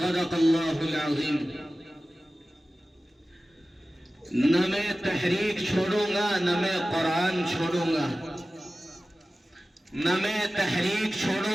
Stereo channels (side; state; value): both; normal; correlation 0.96